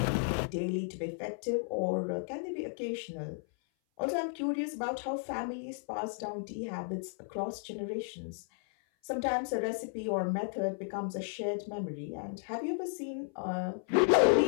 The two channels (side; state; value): right; silent; 55 dB below the other